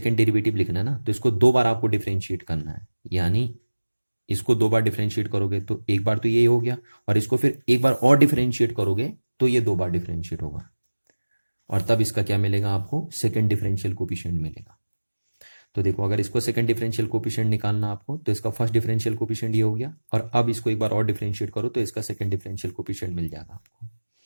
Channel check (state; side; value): inverted; both; correlation -1.00